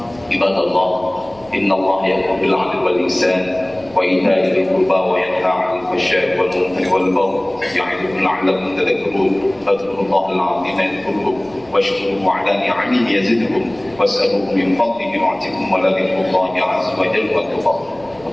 عباد الله إن الله يأمر بالعدل والإحسان وإيتاء ذي القربى وينهى عن الفحشاء والمنكر والبغي يعظكم لعلكم تذكرون. فاذكروا الله العظيم يذكركم واشكروه على نعمه يزدكم واسألوه من فضله يعطكم ولذكر الله عز وجل أكبر.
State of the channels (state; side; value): noise; right; rumble, 25 dB below the sound